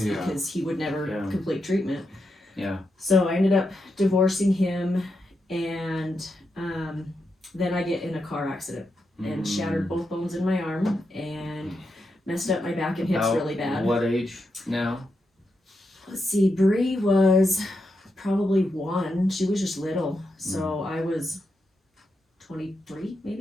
Yeah. because he would never Yeah. complete treatment. Yeah. So I ended up divorcing him, and then I get in a car accident and shattered both bones in my arm and messed up my back and hips About really bad. What age now? Let's see, Bree was probably 1. She was just little, so I was 23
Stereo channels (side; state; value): both; normal; correlation 0.85